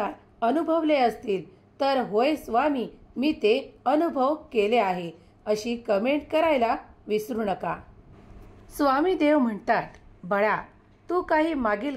अनुभवले असतील, तर होय स्वामी मी ते अनुभव केले आहे अशी कमेंट करायला विसरू नका. स्वामी देव म्हणतात, बाळा तू काही मागील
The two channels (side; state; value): both; identical; correlation 1.00